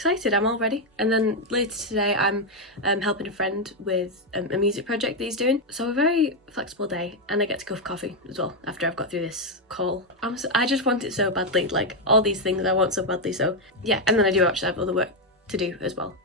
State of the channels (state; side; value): normal; both; correlation 0.03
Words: I'm all ready. And then later today I'm helping a friend with a music project that he's doing, so a very flexible day, and I get to go for coffee as well after I've got through this call. I just want it so badly, like all these things I want so badly. So yeah, and then I do actually have other work to do as well.